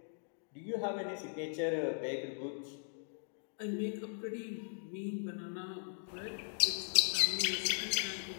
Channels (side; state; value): right; silent; digital silence